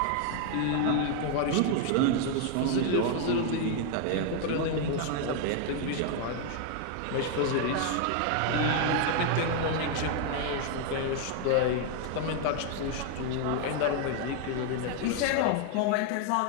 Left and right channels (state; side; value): different; both; correlation 0.00